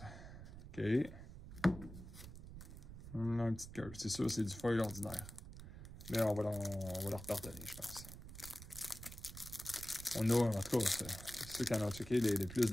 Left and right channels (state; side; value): noise; right; rumble, 13 dB below the sound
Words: OK. On a une petite curve. C'est sûr, c'est du foil ordinaire. Mais on va leur pardonner, je pense. On a, en tout cas, ceux qui en ont checké les plus